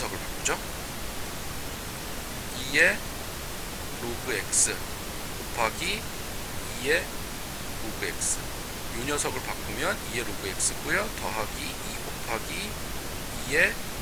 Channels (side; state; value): both; identical; correlation 1.00